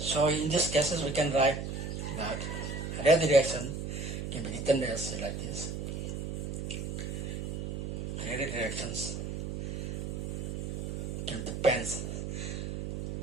in these cases, we can write that rate of the reaction can be written as like this. Rate of the reactions can depends.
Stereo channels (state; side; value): noise; right; hum, 4 dB below the sound